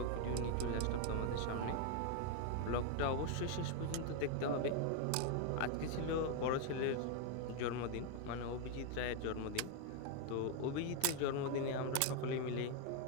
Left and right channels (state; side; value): different; both; correlation 0.01